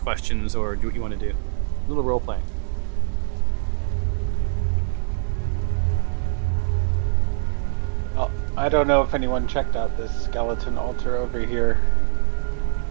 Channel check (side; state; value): left; silent; digital silence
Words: questions or do what you want to do. A little role playing. Oh, I don't know if anyone checked out this skeleton altar over here.